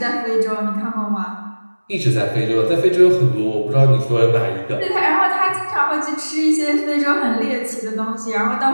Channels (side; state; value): both; inverted; correlation -1.00